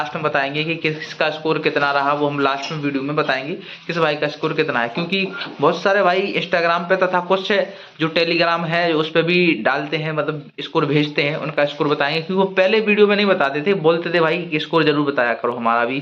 में बताएंगे कि किसका स्कोर कितना रहा। वो हम लास्ट में वीडियो में बताएंगे किस भाई का स्कोर कितना है, क्योंकि बहुत सारे भाई इंस्टाग्राम पे तथा कुछ जो टेलीग्राम है उस पर भी डालते हैं, मतलब स्कोर भेजते हैं, उनका स्कोर बताएंगे। क्योंकि वो पहले वीडियो में नहीं बताते थे, बोलते थे भाई कि स्कोर जरूर बताया करो हमारा भी।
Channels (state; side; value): identical; both; correlation 1.00